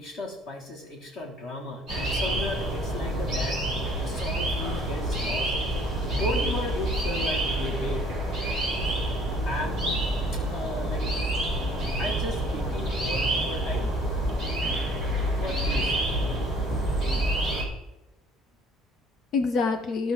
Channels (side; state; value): both; normal; correlation 0.57